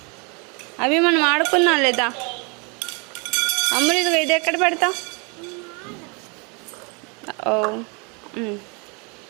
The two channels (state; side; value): quieter; left; 32.4 dB